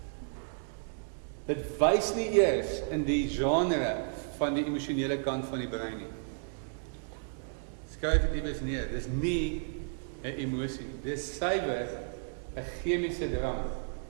Dit wys nie eers in die genre van die emosionele kant van die brein nie. Skryf dit iewers neer, dis nie 'n emosie nie. Dis suiwer 'n chemiese drang.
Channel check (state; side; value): silent; left; digital silence